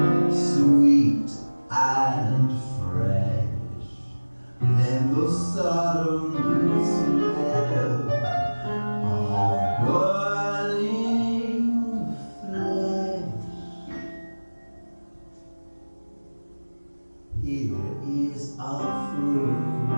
sweet and fresh. Then the sudden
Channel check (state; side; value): inverted; both; correlation -1.00